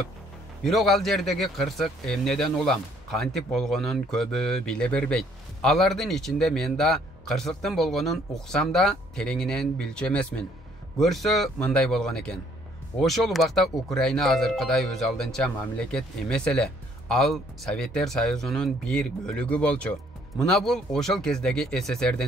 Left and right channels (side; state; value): both; normal; correlation 0.63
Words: Бирок ал жердеги кырсык эмнеден улам, кантип болгонун көбү биле бербейт. Алардын ичинде мен да кырсыктын болгонун уксам да тереңинен билчү эмесмин. Көрсө мындай болгон экен. Ошол убакта Украина азыркыдай өз алдынча мамлекет эмес эле. Ал Советтер Союзунун бир бөлүгү болчу. Мына бул ошол кездеги